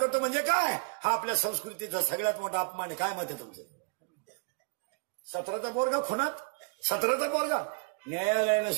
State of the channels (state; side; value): quieter; left; 36.1 dB